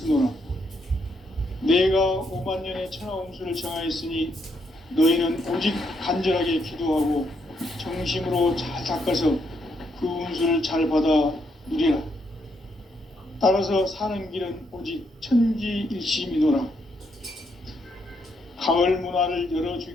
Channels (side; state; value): both; normal; correlation 0.76